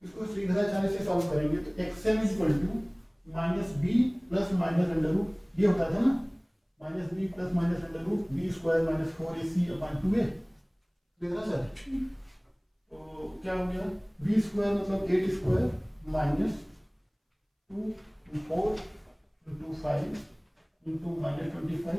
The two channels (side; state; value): both; identical; correlation 1.00